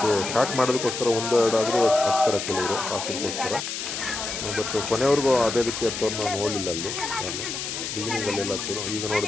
ಸ್ಟಾರ್ಟ್ ಮಾಡೋದಕ್ಕೋಸ್ಕರ 1-2 ಆದರೂ ಹತ್ತಾರೆ ಕೆಲವರು ಕಾಫಿಗೋಸ್ಕರ. ಬಟ್ ಕೊನೆಯವ್ರಿಗೂ ಅದೇ ರೀತಿ ಹತ್ತೋರು ನಾವು ನೋಡಲಿಲ್ಲ ಅಲ್ಲಿ. ನಾನು ಬಿಗಿನಿಂಗಲ್ಲೆಲ್ಲ ಹತ್ತೋರು. ಈಗ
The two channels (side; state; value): left; noise; hiss, 5 dB below the sound